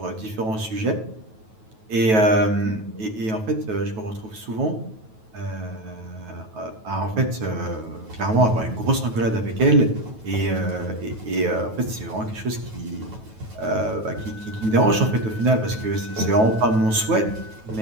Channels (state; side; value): late; left; 9.3 ms